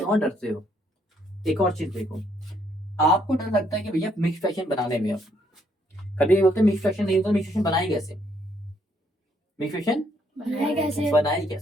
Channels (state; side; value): normal; both; correlation 0.70